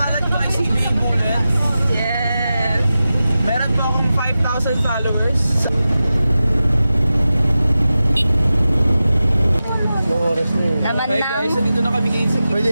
ko ay CB Bullet. Yes! Meron po akong 5,000 followers. Yung oras na yun. Naman Hey lang. guys, dito na kami ngayon sa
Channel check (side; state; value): both; inverted; correlation -0.93